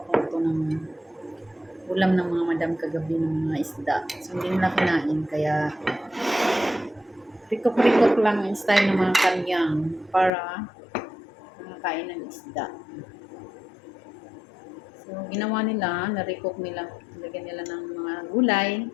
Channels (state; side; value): drops out; right; at 10.3 s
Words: ko ito ng ulam ng mga madam kagabi ng mga isda. So hindi nila kinain kaya recook lang yung style ng mga kanyang para makakain ng isda. So, ginawa nila, na-recook nila, lagyan nila ng mga gulay,